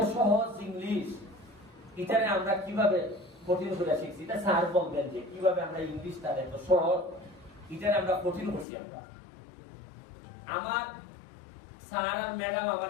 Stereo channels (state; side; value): drops out; right; at 8.7 s